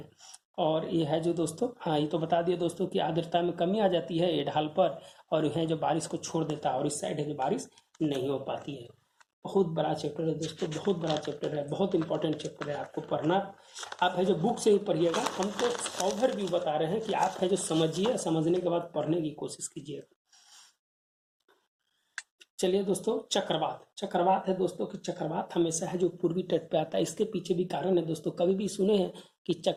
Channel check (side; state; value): both; identical; correlation 1.00